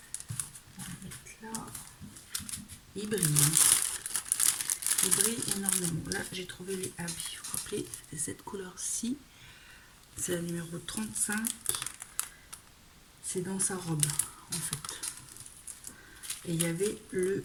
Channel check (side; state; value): both; identical; correlation 1.00